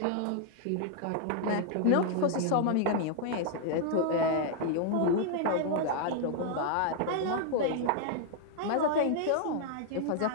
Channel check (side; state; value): both; different; correlation 0.00